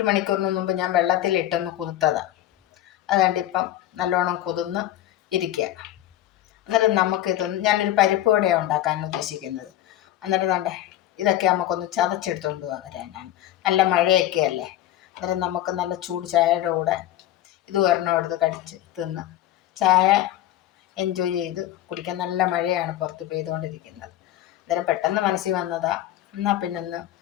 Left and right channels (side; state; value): right; quieter; 13.4 dB